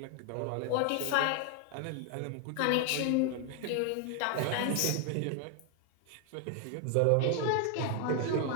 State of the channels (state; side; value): different; both; correlation 0.01